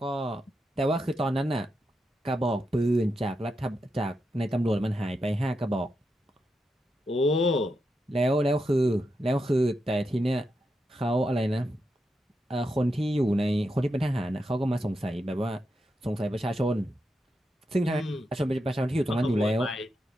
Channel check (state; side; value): normal; both; correlation 0.86